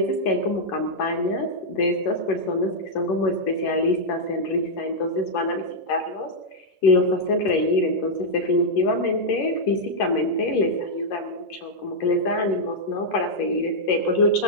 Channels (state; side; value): late; right; 11 ms